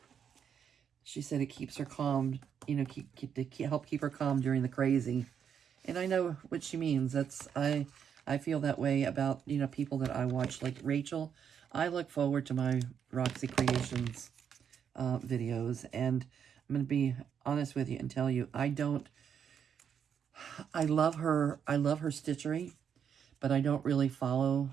She said it keeps her calm, you know, help keep her calm during the crazy. And I know what she means. I feel that way about, you know, people that I watch, like Rachel. I look forward to my Roxy Creations videos, and I'm going to be honest with you and tell you, I love her stitchery, but I don't really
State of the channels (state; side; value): quieter; left; 7.9 dB